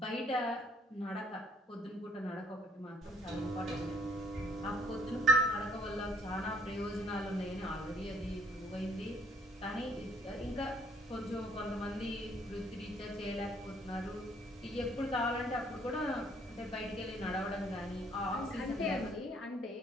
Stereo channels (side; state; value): both; normal; correlation 0.63